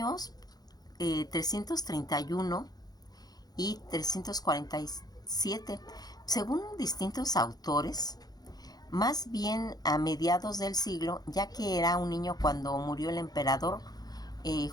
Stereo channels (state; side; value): late; right; 0.19 ms